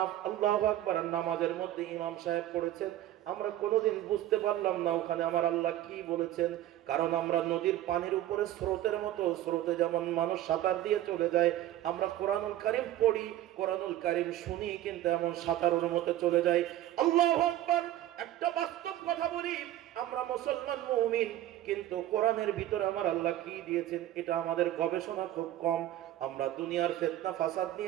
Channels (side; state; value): left; quieter; 13.6 dB